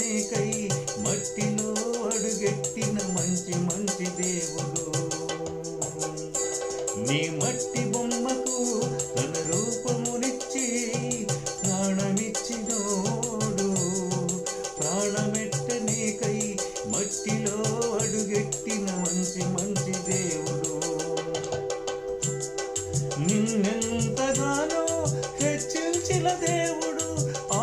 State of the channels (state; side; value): identical; both; correlation 1.00